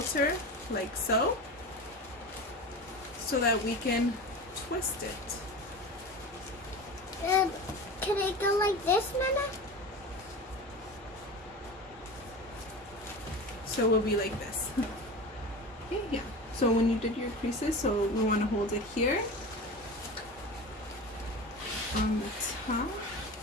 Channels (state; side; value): normal; both; correlation 0.30